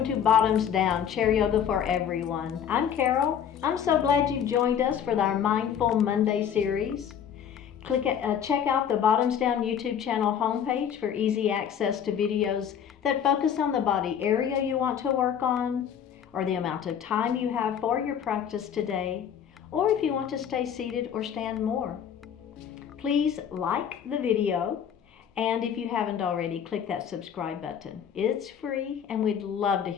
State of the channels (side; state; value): right; quieter; 8.5 dB